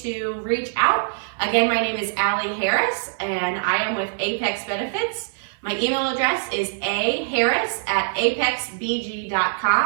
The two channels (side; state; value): left; silent; 63 dB below the other